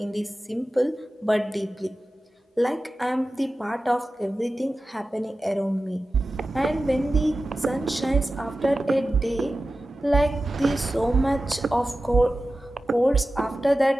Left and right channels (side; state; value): both; normal; correlation 0.94